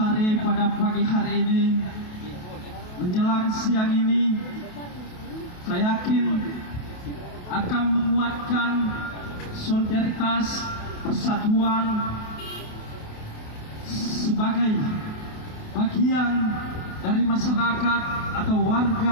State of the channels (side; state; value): right; late; 28 ms